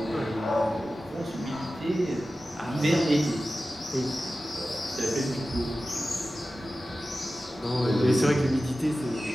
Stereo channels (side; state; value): both; normal; correlation 0.94